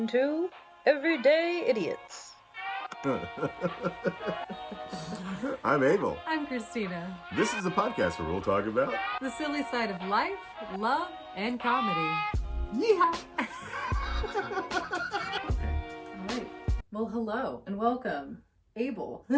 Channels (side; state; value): both; identical; correlation 1.00